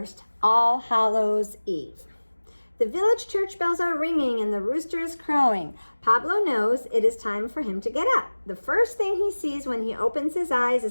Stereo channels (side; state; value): both; inverted; correlation -1.00